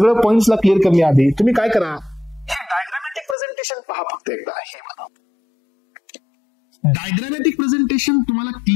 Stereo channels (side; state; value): right; drops out; at 3.4 s